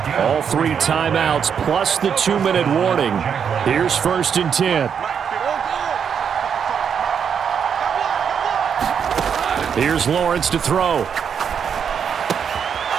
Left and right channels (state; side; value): quieter; left; 7.3 dB